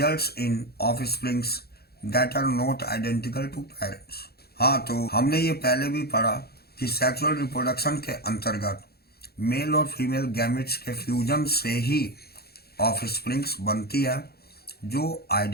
in offsprings that are not identical to parents. हाँ, तो हमने ये पहले भी पढ़ा कि सेक्सुअल रिप्रोडक्शन के अंतर्गत मेल और फीमेल गैमेट्स के फ्यूजन से ही ऑफस्प्रिंग्स बनती है जो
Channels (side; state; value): right; late; 0.46 ms